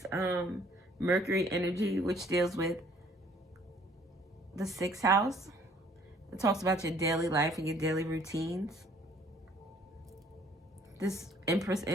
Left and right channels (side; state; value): both; normal; correlation 0.59